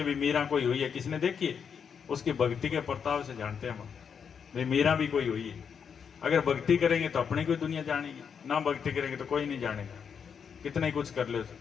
भी मीरा कोई हुई है। किसने देखी है? उसकी भक्ति के प्रताप से जानते हैं हम भाई मीरा भी कोई हुई है। अगर भक्ति करेंगे तो अपनी कोई दुनिया जानेगी, ना भक्ति करेंगे तो कोई नहीं जानेगा, कितना ही कुछ कर ले।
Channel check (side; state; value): right; quieter; 6.9 dB